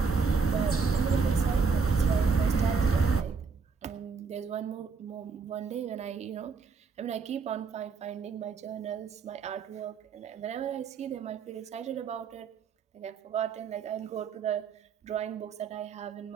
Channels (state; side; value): quieter; left; 5.2 dB